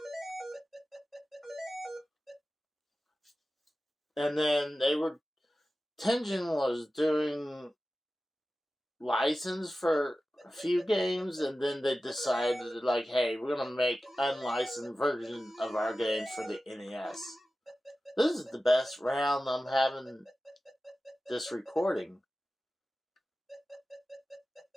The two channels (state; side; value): normal; both; correlation 0.95